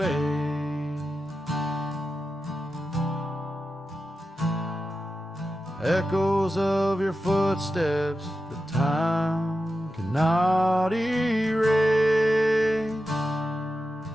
Echoes of your footsteps that time cannot erase.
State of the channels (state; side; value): normal; both; correlation 0.91